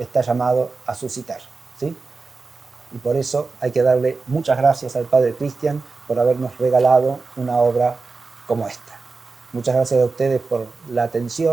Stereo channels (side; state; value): left; quieter; 4.1 dB